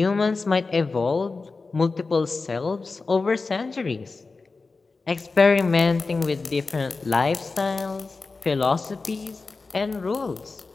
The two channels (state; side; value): quieter; right; 4.0 dB